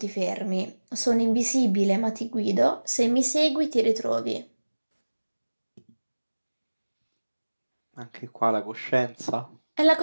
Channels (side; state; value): both; inverted; correlation -1.00